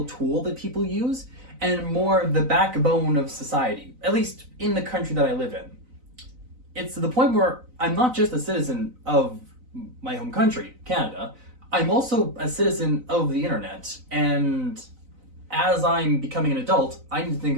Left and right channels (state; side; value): late; left; 4.0 ms